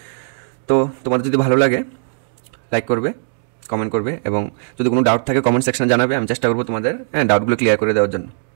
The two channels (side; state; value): left; silent; digital silence